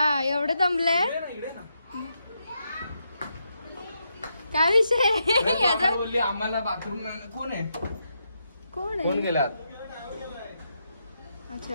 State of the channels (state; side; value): inverted; both; correlation -0.82